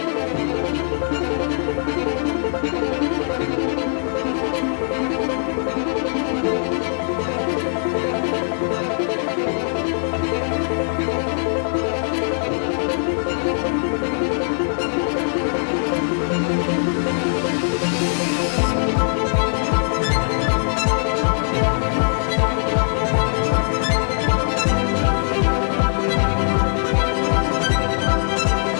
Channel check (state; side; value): silent; right; digital silence